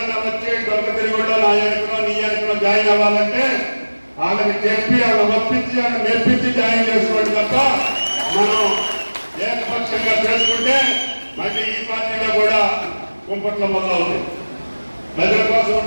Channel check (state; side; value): inverted; both; correlation -1.00